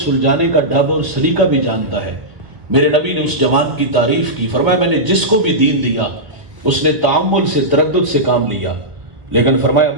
سلجھانے کا ڈھب اور سلیقہ بھی جانتا ہے۔ میرے نبی نے اس جوان کی تعریف کی، فرمایا میں نے جس کو بھی دین دیا اس نے تعامل سے، تردد سے کام لیا، لیکن فرمایا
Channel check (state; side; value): late; left; 1.8 ms